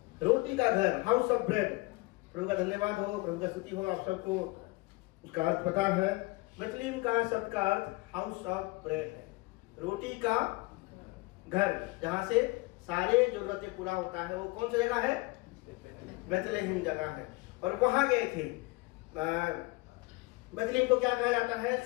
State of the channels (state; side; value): quieter; right; 23.4 dB